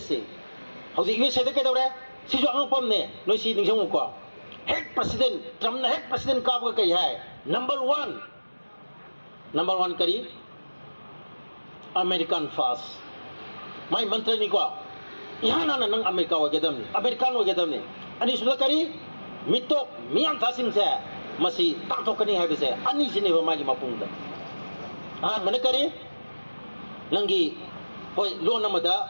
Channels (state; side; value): inverted; both; correlation -1.00